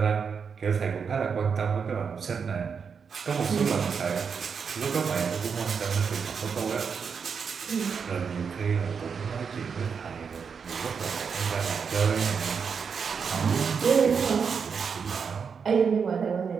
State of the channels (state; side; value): quieter; left; 6.1 dB